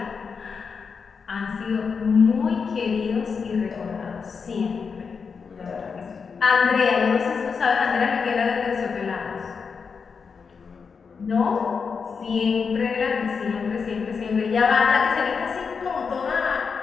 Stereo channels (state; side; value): quieter; right; 5.6 dB